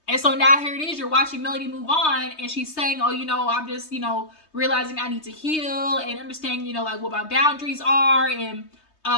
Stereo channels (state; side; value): late; right; 3.2 ms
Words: And so now here it is, you're watching Melody move on, and she's saying, oh, I'm just, realizing I need to heal and understand, like, what my boundaries are, and